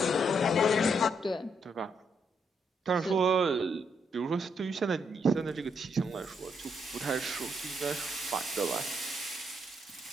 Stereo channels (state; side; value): normal; both; correlation 0.76